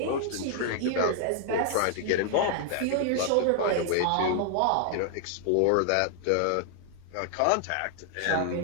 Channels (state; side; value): different; both; correlation 0.00